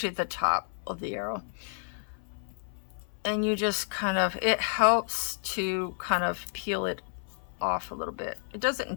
at the top of the arrow. And you just kind of, it helps to kind of peel it off a little bit. It doesn't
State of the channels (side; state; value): right; silent; 57 dB below the other